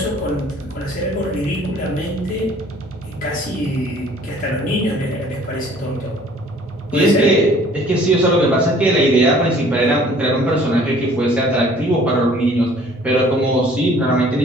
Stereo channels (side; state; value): both; normal; correlation 0.54